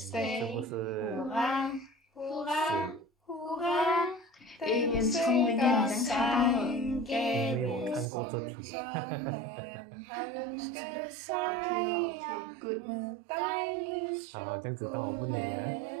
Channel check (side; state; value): left; drops out; at 8.1 s